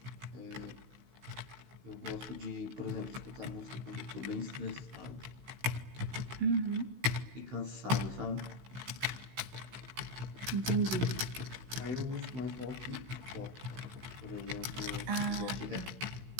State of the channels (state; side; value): late; left; 16 ms